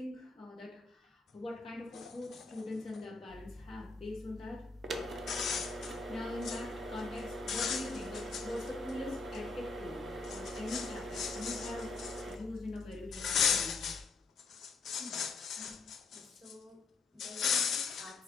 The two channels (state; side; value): quieter; right; 4.1 dB